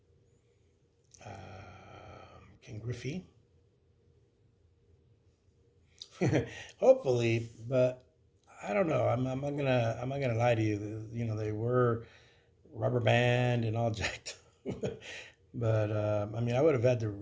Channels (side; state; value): both; identical; correlation 1.00